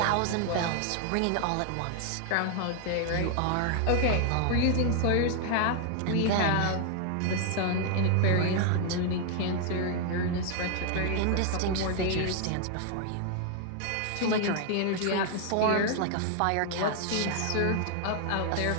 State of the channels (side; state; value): both; different; correlation 0.00